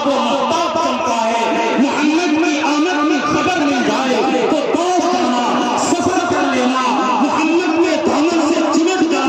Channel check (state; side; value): identical; both; correlation 1.00